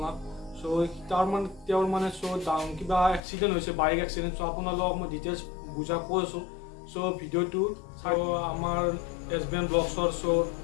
So তেওঁৰ মানে কিবা এক্সিডেণ্ট হৈছে, বাইক এক্সিডেণ্ট. So আপোনালোকক মই ডিটেইলছ বুজা কৈ আছোঁ. So ভিডিঅ'টো আমাৰ SBN ব্লগছৰ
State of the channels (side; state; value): right; drops out; at 3.2 s